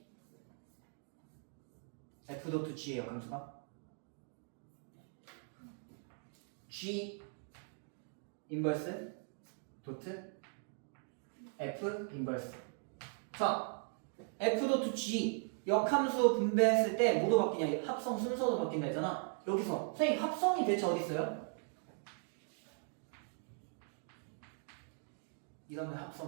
f.g의 역함수가 g 인버스 도트 f 인버스. 자, f.g 역함수 분배했을 때 뭐도 바뀌냐? 합성 순서도 바뀐다 했잖아. 여기서 선생님 합성이 대체 어디 있어요? 이러면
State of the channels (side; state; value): left; silent; 52 dB below the other